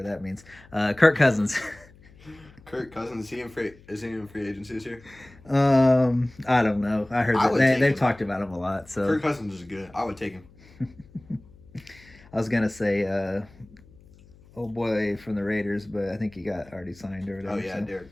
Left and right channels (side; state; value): left; noise; hum, 25 dB below the sound